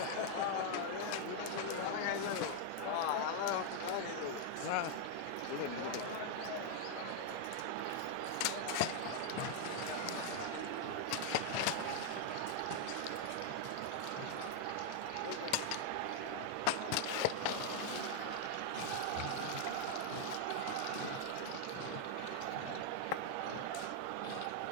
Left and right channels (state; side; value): different; both; correlation 0.00